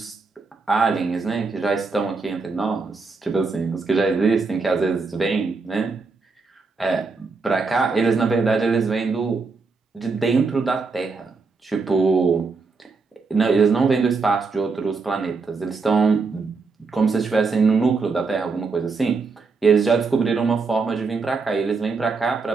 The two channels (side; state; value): left; quieter; 4.4 dB